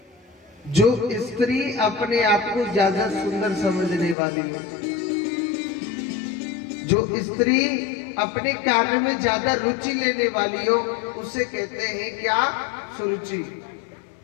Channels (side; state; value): right; drops out; at 4.2 s